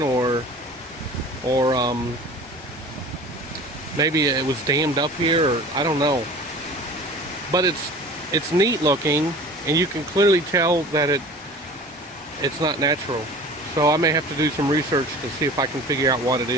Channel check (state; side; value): normal; both; correlation 0.41